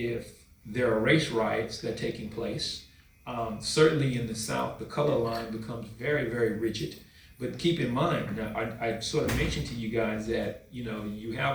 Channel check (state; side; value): identical; both; correlation 1.00